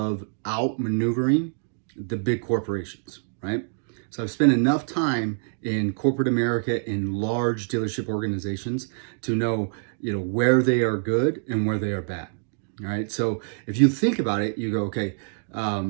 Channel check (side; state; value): left; silent; digital silence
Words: outmaneuvering the big corporations, right? So I've spent enough time in corporate America in large dealership organizations to know, where they are good and where they are bad. All right. So if you think about it, you go, okay,